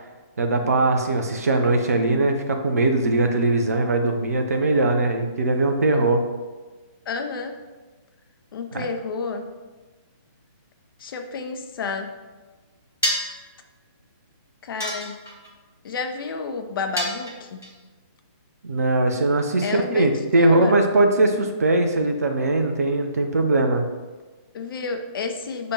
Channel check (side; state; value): both; inverted; correlation -0.62